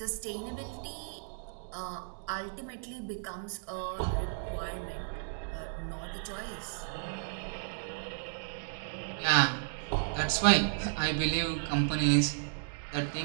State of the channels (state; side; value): silent; left; digital silence